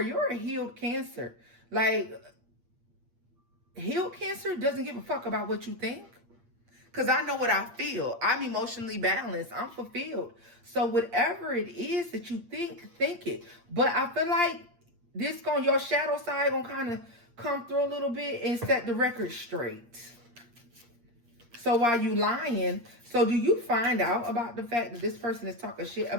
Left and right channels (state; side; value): late; left; 8.6 ms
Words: a healed Cancer. Like, healed Cancer doesn't give a fuck about what you think. Because I know what I feel. I'm emotionally balanced. I'm fulfilled. So whatever it is that you think it. But I feel like your shadow side gonna kind of come through a little bit and set the record straight. So while you lying, so do you find out about the fact that this person is talking shit